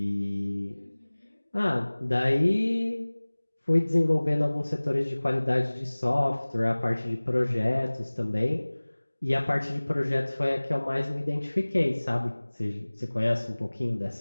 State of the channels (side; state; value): both; inverted; correlation -1.00